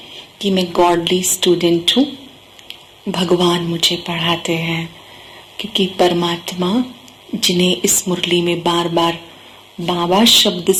कि मैं गॉडली स्टूडेंट हूँ, भगवान मुझे पढ़ाते हैं। क्योंकि परमात्मा जिन्हें इस मुरली में बार बार बाबा शब्द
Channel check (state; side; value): identical; both; correlation 1.00